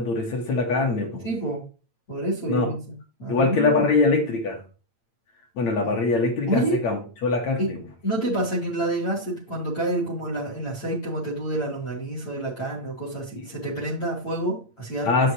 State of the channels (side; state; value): right; late; 8.8 ms